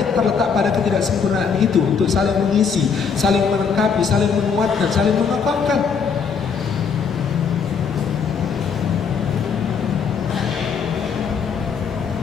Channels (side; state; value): right; quieter; 6.1 dB